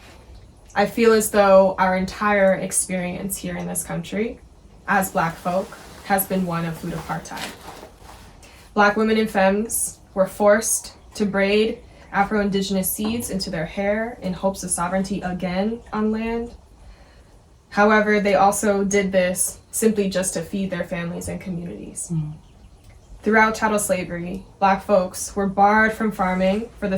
feel as though our entire experience here in this country as Black folk has been one of food apartheid. Black women and femmes were forced to braid Afro-Indigenous seeds into their hair in hopes of sovereignty again on land. However, they also did this simply just to feed their families and communities. Throughout chattel slavery, Black folks were barred from farming for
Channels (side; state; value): both; identical; correlation 1.00